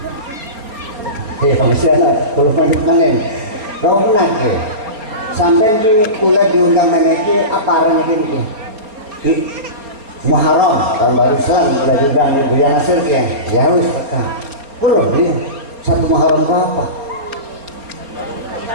Ya masih ada, belum lanjut manen. Kau pernah ke? Sampai di kuliah diundang meneki apa arahnya gini? Muharram tahun baru Islam kuliah diundang di Buya Nasir ke? Ya wes peka. Belum dia satu Muharram berapa?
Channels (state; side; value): late; left; 4.3 ms